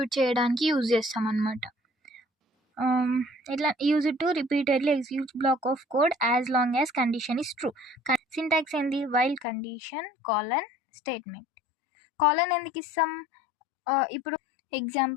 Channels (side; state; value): right; drops out; at 9.5 s